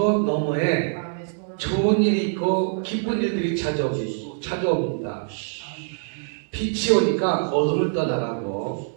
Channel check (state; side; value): silent; left; 63 dB below the other